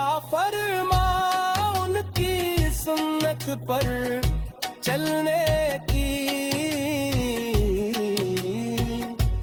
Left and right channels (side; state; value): both; identical; correlation 1.00